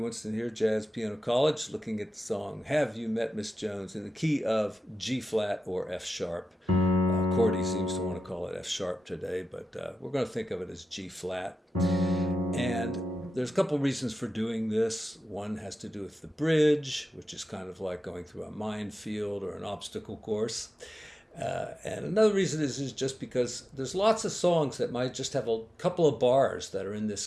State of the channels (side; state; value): both; normal; correlation 0.92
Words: here, Jazz Piano College, looking at the song Have You Met Miss Jones in the key of G flat or F sharp. Cordy seems to want to call it F sharp today, but we're going to think of it as G flat. And there's a couple reasons for doing this. One has to do with the bridge, which is kind of like going through a minefield or an obstacle course. And another reason is just because there's lots of songs that might just have a couple of bars that are in this